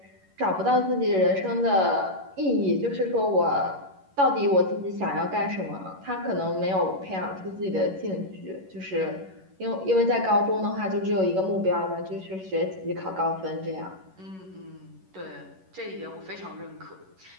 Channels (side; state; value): left; late; 11 ms